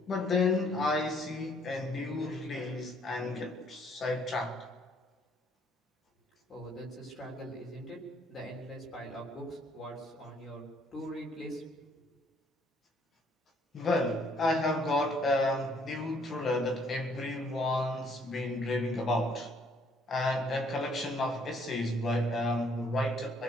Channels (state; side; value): normal; both; correlation 0.65